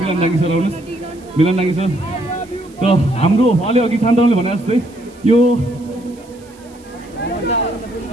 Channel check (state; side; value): noise; right; hiss, 27 dB below the sound